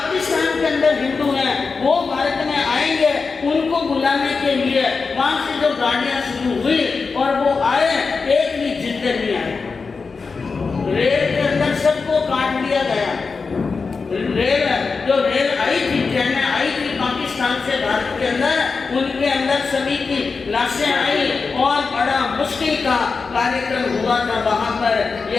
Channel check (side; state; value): right; quieter; 4.7 dB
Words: के अंदर हिंदू हैं वो भारत में आएंगे, उनको बुलाने के लिए वहां से जो गाड़ियां शुरू हुई और वो आए, एक भी जिंदे नहीं आए। रेल के अंदर सबको काट दिया गया। रेल आई थी, ट्रेनें आई थी पाकिस्तान से भारत के अंदर, उनके अंदर सभी की लाशें आई और बड़ा मुश्किल का कार्यक्रम हुआ था। वहां पर